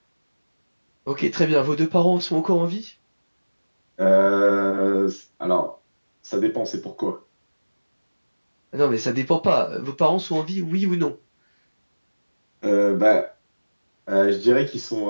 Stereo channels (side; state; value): both; inverted; correlation -1.00